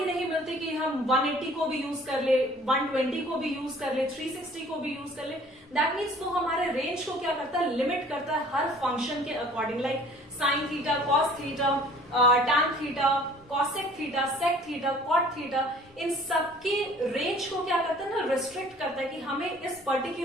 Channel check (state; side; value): normal; both; correlation 0.52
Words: नहीं मिलती कि हम 180 को भी यूज कर ले, 120 को भी यूज कर ले, 360 को भी यूज कर ले। दैट मीन्स वो हमारे रेंज को क्या करता है, लिमिट करता है हर फंक्शन के according. Like sine theta, cos theta, tan theta, cosec theta, sec theta, cot theta, इन सबके रेंज को क्या करता है ना, रिस्ट्रिक्ट करता है कि हमें इस